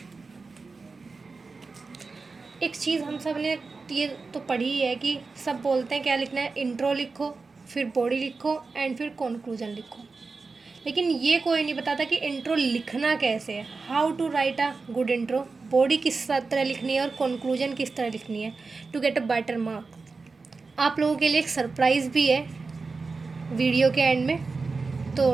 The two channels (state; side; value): quieter; left; 4.2 dB